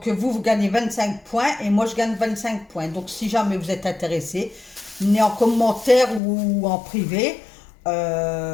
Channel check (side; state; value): right; drops out; at 6.2 s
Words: vous gagnez 25 points et moi je gagne 25 points. Donc si jamais vous êtes intéressé, venez en commentaire ou en privé. Puis